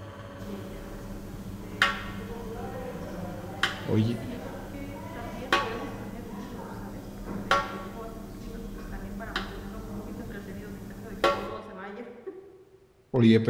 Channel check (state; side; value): identical; both; correlation 1.00